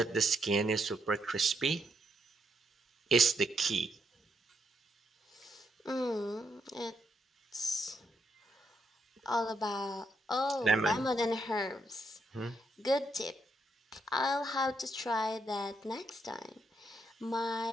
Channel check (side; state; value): both; normal; correlation 0.77